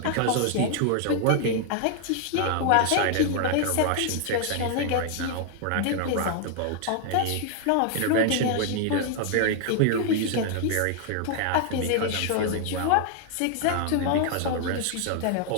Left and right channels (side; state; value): both; different; correlation 0.00